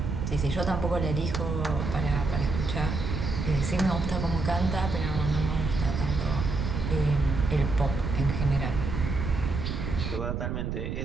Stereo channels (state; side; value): noise; right; rumble, 3 dB below the sound